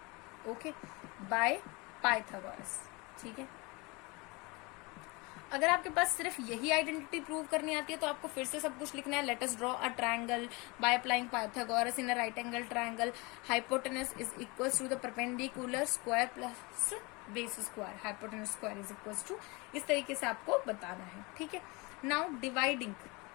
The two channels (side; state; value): right; quieter; 26.5 dB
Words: okay, by Pythagoras, ठीक है। अगर आपके पास सिर्फ यही आइडेंटिटी प्रूव करनी आती है तो आपको फिर से सब कुछ लिखना है, let us draw a triangle by applying Pythagoras in a right angle triangle, hypotenuse is equal to the perpendicular square plus base square, hypotenuse square is equal to, इस तरीके से आपको बताना है, ठीक है। नाउ डिवाइडिंग,